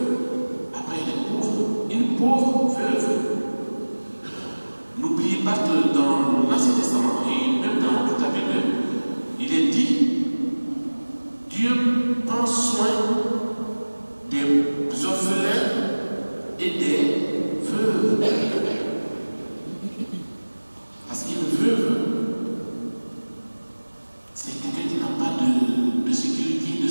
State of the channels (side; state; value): both; inverted; correlation -1.00